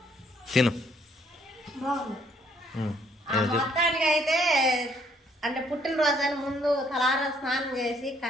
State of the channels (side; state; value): both; normal; correlation 0.66